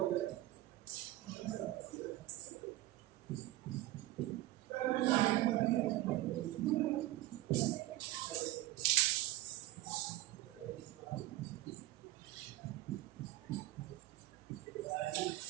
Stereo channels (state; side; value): quieter; left; 16.3 dB